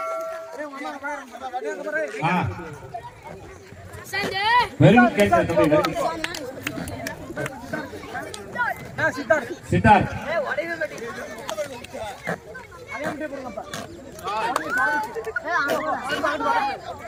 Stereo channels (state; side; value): identical; both; correlation 1.00